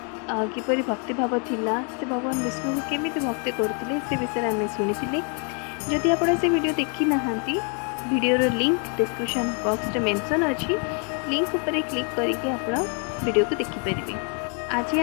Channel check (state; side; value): quieter; right; 39.0 dB